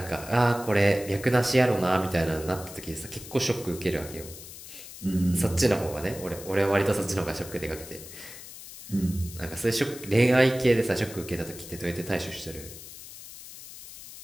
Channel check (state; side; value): noise; left; hiss, 14 dB below the sound